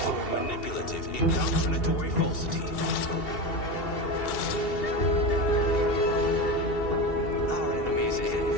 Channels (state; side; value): late; right; 2.7 ms